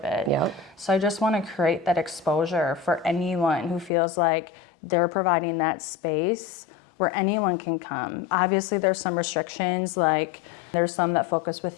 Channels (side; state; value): right; drops out; at 3.9 s